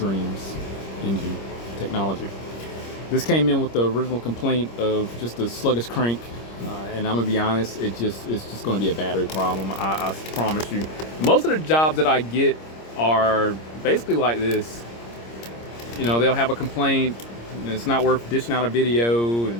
engine technology. This came in with the original complaint of just a sluggish crank, and I'm gonna be honest, it's just gonna be a battery problem. I promise you. Most of the jobs that I get are basically like this. You know, they'll have a complaint, and it's not worth dishing out a video,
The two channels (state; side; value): late; right; 26 ms